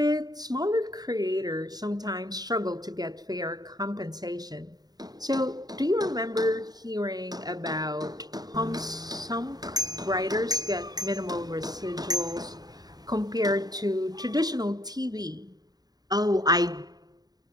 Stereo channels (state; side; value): late; left; 0.19 ms